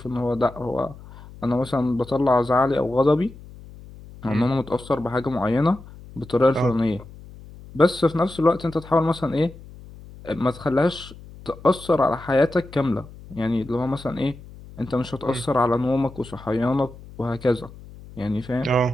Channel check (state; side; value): noise; left; hum, 18 dB below the sound